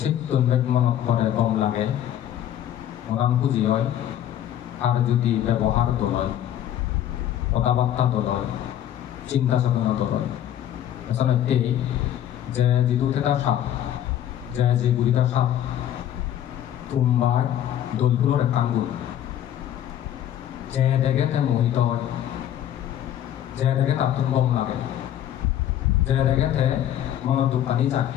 মনত করে কম লাগে মরান খুঁজি হয় আর যদি ব্যবহার তো লয় কথাবার্তা তো লয় চিন্তা চেতনা তো লয় আচলতে যে যিটো এটা সাপ যে গুড়িটা সাপ তোমার দলগুলোর একান গুণ যে দেখে মোহিত যে দেখে তার তুমি কম লাগে যে দেখে মনত দোকানি যায়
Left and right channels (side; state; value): right; quieter; 11.2 dB